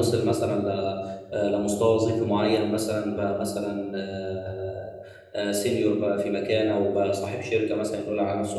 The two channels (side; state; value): both; identical; correlation 1.00